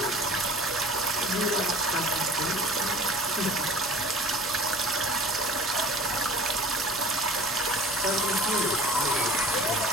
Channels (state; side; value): normal; both; correlation 0.45